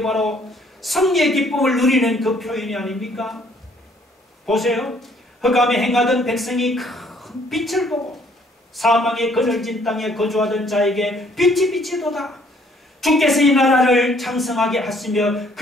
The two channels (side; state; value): both; normal; correlation 0.63